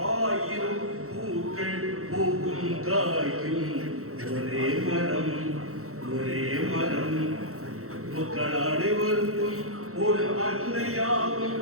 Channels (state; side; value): late; left; 0.64 ms